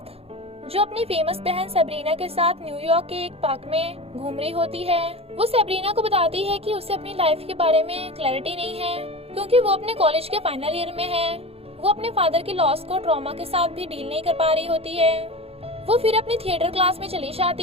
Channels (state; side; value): late; left; 0.29 ms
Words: जो अपनी फेमस बहन सेब्रीना के साथ न्यूयॉर्क के एक पार्क में घूम रही होती है। वो सेब्रीना को बताती है कि उसे अपनी लाइफ के बारे में क्लैरिटी नहीं है, क्योंकि वो अपने कॉलेज के फाइनल ईयर में है। वो अपने फादर की लॉस को ट्रॉमा के साथ भी डील नहीं कर पा रही होती है। वो फिर अपनी थिएटर क्लास में चली